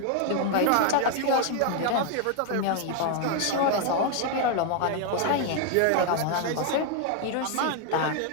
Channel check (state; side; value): different; both; correlation 0.00